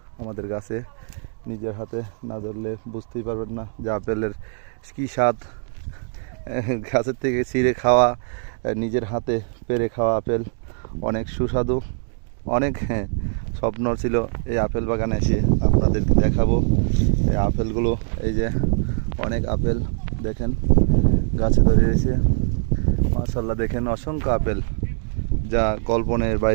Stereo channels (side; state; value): left; silent; 64 dB below the other